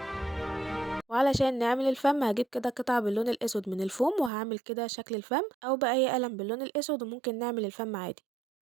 وعلشان نعمل الفم هجيب كده قطعة باللون الأسود من الفوم وهعمل كده شكل الفم، أو بأي قلم باللون الأسود وممكن نعمل الفم عادي.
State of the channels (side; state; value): left; drops out; at 4.3 s